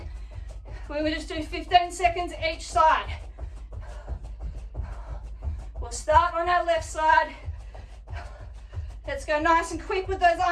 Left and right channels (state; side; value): identical; both; correlation 1.00